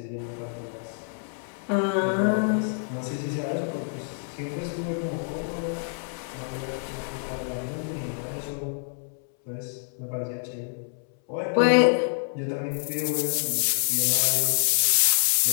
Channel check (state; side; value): silent; right; 59 dB below the other